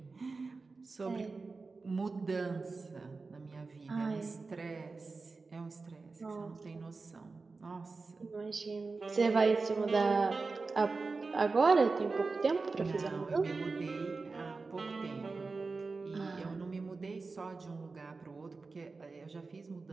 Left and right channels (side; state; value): left; quieter; 4.0 dB